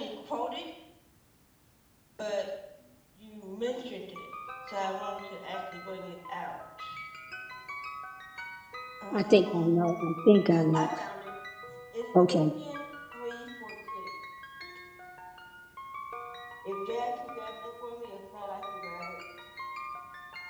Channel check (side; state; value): both; identical; correlation 1.00